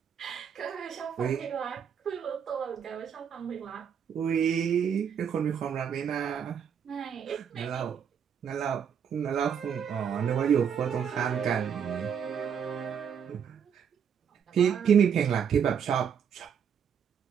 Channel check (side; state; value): left; quieter; 7.7 dB